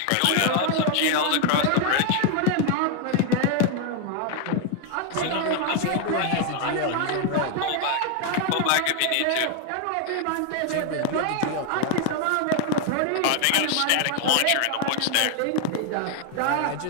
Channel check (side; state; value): both; different; correlation 0.00